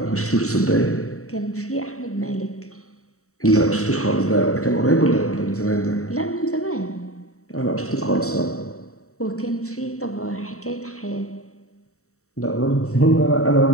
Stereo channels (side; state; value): right; late; 0.64 ms